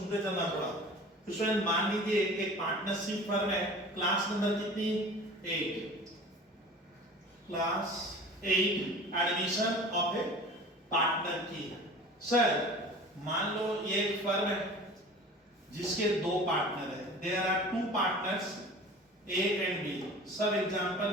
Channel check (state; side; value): normal; both; correlation 0.41